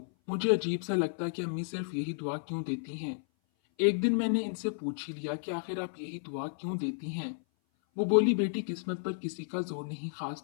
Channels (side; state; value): right; silent; 56 dB below the other